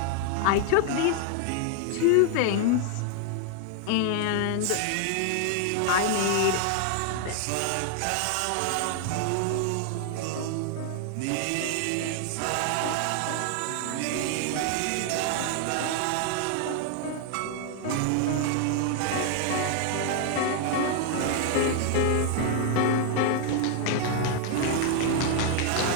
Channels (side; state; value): both; different; correlation 0.00